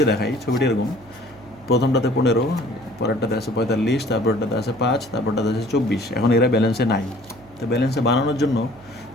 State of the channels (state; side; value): noise; right; hum, 25 dB below the sound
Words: দেখাই, ছবিটি এরকম, প্রথমটাতে 15, পরেরটাতে আছে 45, তারপরটাতে আছে 5, তারপরটাতে আছে 24। এখন এরা ব্যালেন্সে নাই। তো ব্যালেন্সে বানানোর জন্য